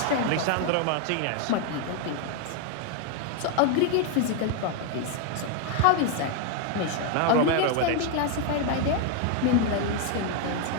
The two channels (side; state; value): both; different; correlation 0.00